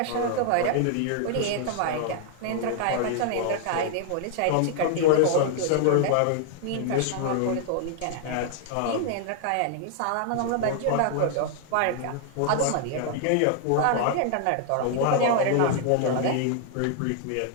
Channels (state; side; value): different; both; correlation 0.00